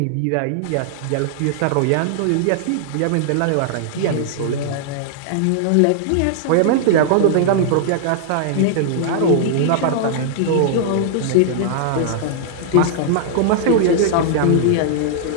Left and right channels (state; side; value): different; both; correlation -0.01